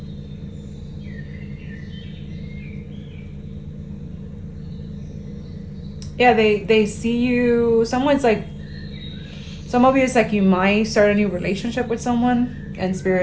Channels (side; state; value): both; identical; correlation 1.00